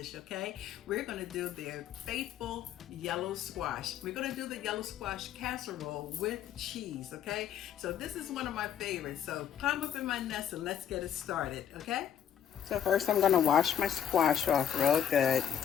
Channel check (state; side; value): quieter; right; 9.3 dB